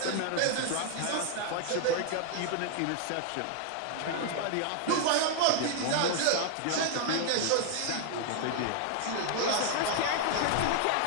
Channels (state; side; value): different; both; correlation 0.00